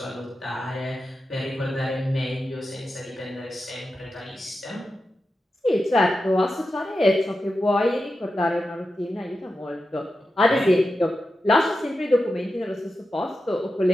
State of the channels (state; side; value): normal; both; correlation 0.91